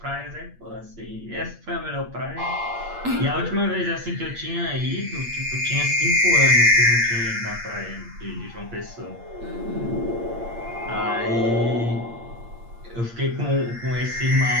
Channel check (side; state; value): left; late; 8.6 ms